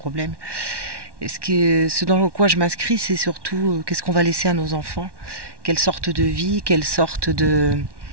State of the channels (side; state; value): left; late; 1.1 ms